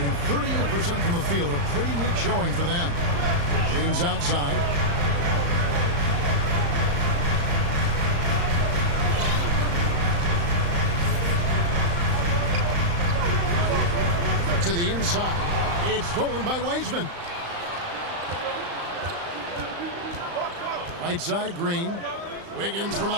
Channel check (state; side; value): late; left; 35 ms